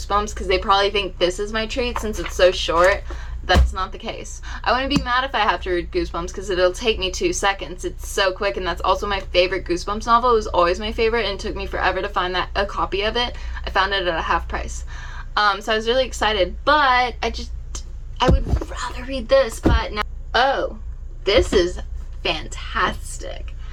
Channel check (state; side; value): identical; both; correlation 1.00